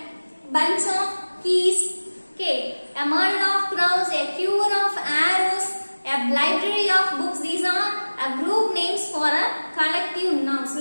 bunch of keys. Okay, a murder of crowns, a cure of arrows, a library of books. These are a group names for a collective nouns.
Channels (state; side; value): inverted; both; correlation -1.00